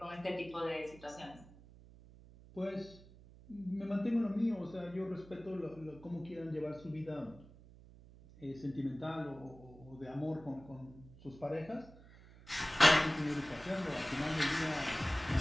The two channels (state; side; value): noise; right; hum, 21 dB below the sound